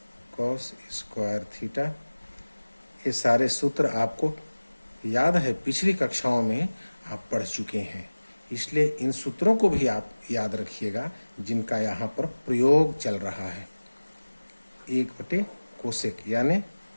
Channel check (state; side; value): inverted; both; correlation -1.00